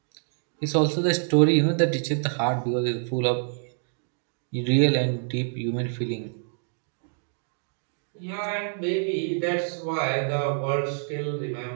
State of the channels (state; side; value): silent; left; digital silence